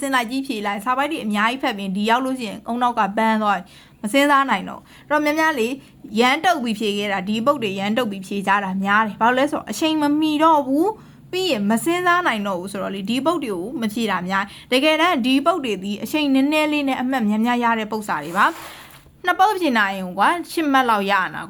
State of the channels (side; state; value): both; identical; correlation 1.00